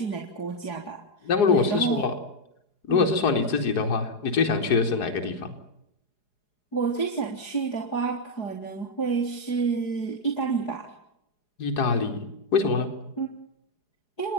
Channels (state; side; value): late; right; 4.8 ms